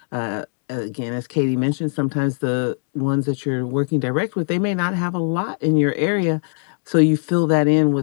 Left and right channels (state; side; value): silent; right; digital silence